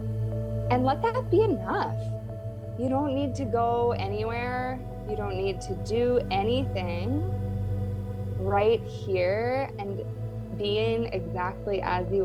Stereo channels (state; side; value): identical; both; correlation 1.00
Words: and let that be enough. You don't need to go anywhere. You don't need to do anything. Right here and being exactly as